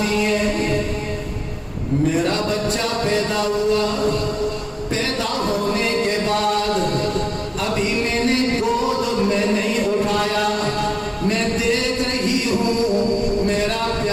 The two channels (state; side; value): identical; both; correlation 1.00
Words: ہے میرا بچہ پیدا ہوا، پیدا ہونے کے بعد ابھی میں نے گود میں نہیں اٹھایا، میں دیکھ رہی ہوں میرا